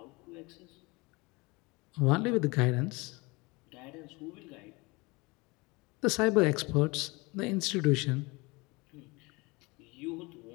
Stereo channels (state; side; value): quieter; right; 25.4 dB